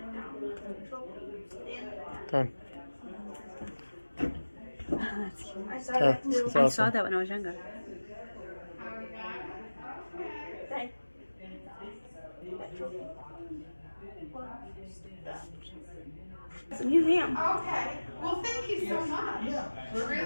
Done. That's cute. Yeah, it's I saw awesome. that when I was younger. Hey. It's a museum. Okay, well, thank you so much. We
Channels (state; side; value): inverted; both; correlation -1.00